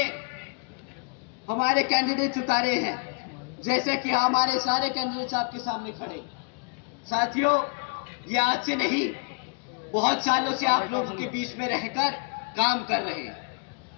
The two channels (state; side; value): quieter; right; 36.1 dB